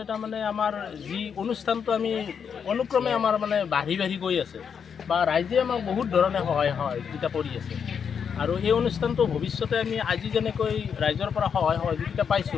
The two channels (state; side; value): quieter; right; 7.0 dB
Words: আমাৰ যি অনুষ্ঠানটো আমি অনুক্ৰমে আমাৰ বাঢ়ি গৈ আছে, বা ৰাইজে আমাক বহুত ধৰণে সহযোগিতা কৰি আছে। আৰু এই অনুষ্ঠানটো ভৱিষ্যতে আমি আজি যেনেকৈ ৰাইজৰ পৰা সহায় সহযোগিতা